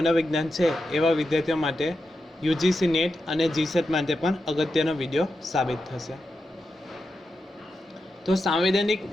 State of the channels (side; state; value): both; normal; correlation 0.89